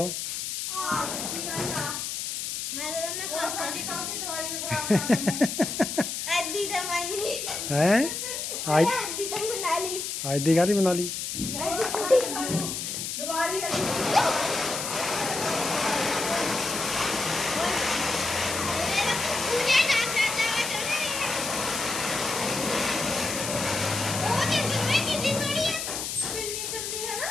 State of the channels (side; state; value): left; noise; hiss, 4 dB below the sound